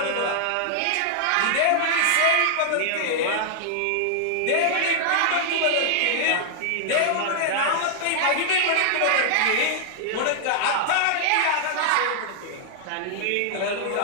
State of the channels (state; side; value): different; both; correlation -0.01